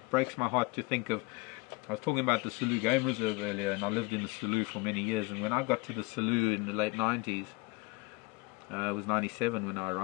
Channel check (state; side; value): quieter; right; 24.5 dB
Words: breaks my heart to think of. I was talking about the Selous Game Reserve earlier, and I lived in the Selous for many years. And when I got to the Selous in the late 90s, it was 97 when I